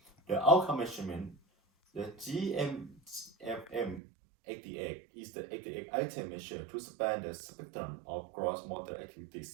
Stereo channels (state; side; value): drops out; left; at 4.0 s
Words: The outcome measurement, the GMFM88 is the 88 item measure to span the spectrum of gross motor